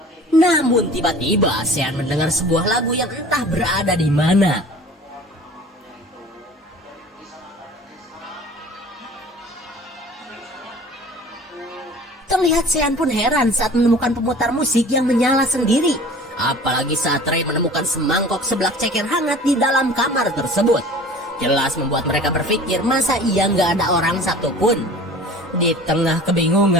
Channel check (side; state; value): both; normal; correlation 0.44